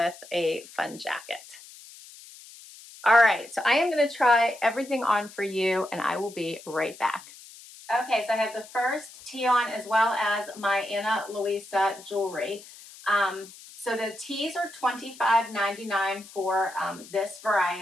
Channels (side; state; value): left; noise; hiss, 19 dB below the sound